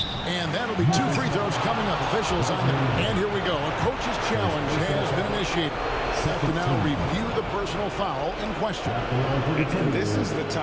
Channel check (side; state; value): both; identical; correlation 1.00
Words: and that'll be 2 free throws coming up. Officials on there. And here we go. A coach's challenge has been initiated. Set to now review the personal foul in question. And this is the